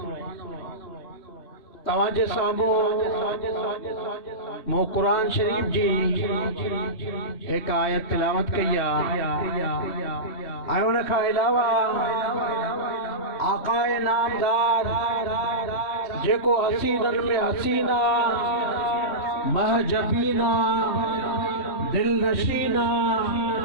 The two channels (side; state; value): right; late; 3.2 ms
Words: تواجہ سامو مو قرآن شریف جی ایک آیت تلاوت کیا۔ آئیونا کا علاوہ آقا نامدار جے کو حسینن میں حسینہ، محجبینہ، دل نشینہ،